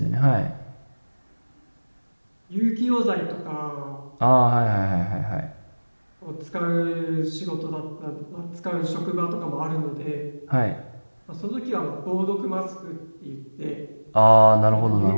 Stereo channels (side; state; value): both; inverted; correlation -1.00